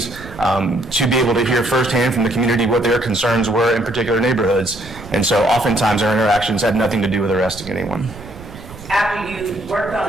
to be able to hear firsthand from the community what their concerns were in particular neighborhoods. And so oftentimes our interactions had nothing to do with arresting anyone. After you worked on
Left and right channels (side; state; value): right; noise; rumble, 16 dB below the sound